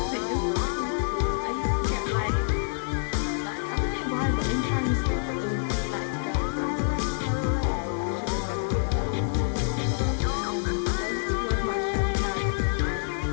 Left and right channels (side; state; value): right; silent; digital silence